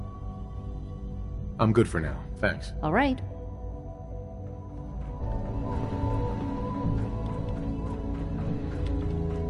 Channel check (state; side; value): identical; both; correlation 1.00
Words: I'm good for now. Thanks. All right.